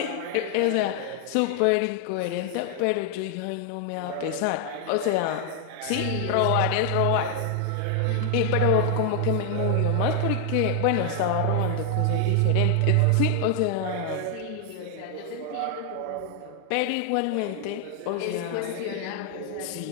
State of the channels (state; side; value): different; both; correlation 0.00